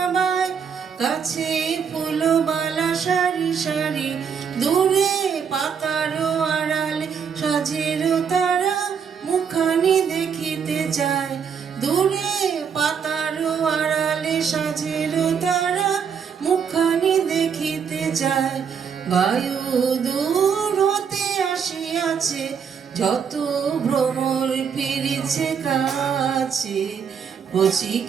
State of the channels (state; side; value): quieter; left; 6.9 dB